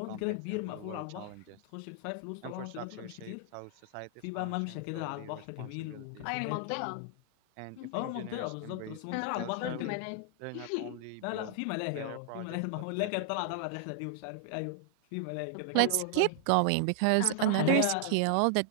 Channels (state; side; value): different; both; correlation 0.00